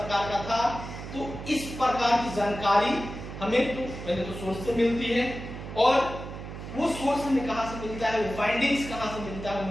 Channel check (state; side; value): noise; right; hum, 10 dB below the sound